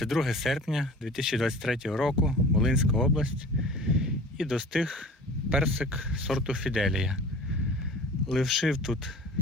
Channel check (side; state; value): both; normal; correlation 0.42